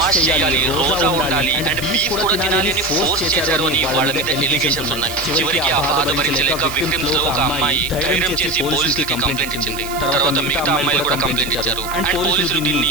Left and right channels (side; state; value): right; noise; hiss, 12 dB below the sound